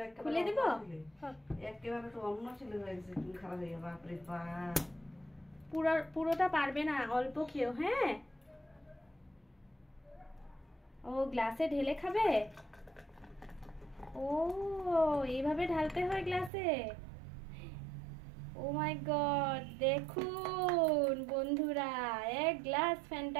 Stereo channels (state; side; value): drops out; left; at 16.5 s